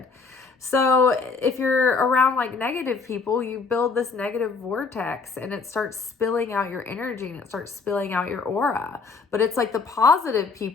So if you're around like negative people, you build this negative vortex, and it starts spilling out your energy, and it starts spilling out your aura. But it's like the positive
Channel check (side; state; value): right; quieter; 4.6 dB